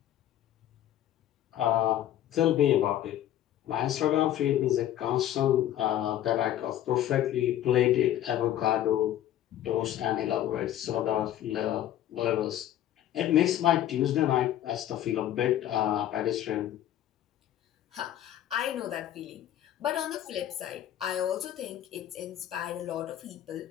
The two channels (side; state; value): right; quieter; 12.1 dB